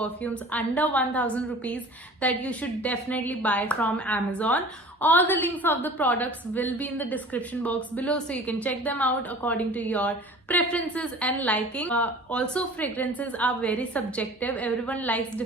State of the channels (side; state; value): both; normal; correlation 0.43